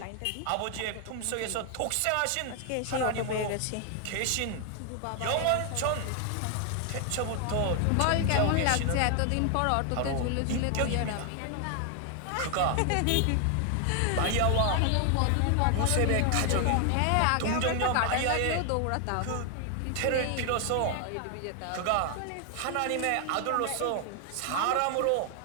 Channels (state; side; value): different; both; correlation 0.00